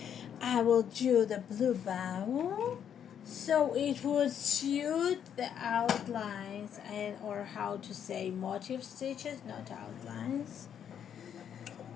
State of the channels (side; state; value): right; quieter; 8.8 dB